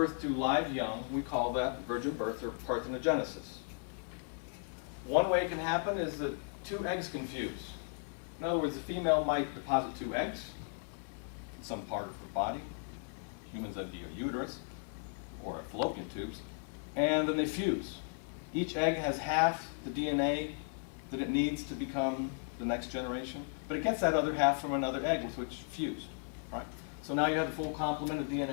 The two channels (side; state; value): right; silent; 54 dB below the other